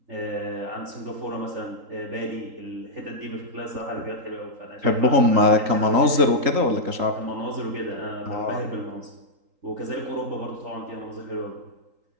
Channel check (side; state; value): left; late; 3.8 ms